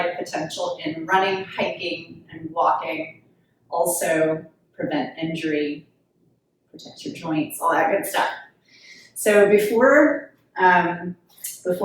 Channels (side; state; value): both; identical; correlation 1.00